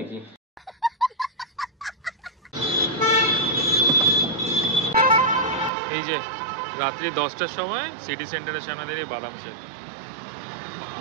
এই যে রাত্রি 10টার সময় সিটি সেন্টারের সামনে দাঁড়িয়ে বাদাম শেক।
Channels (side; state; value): left; drops out; at 5.7 s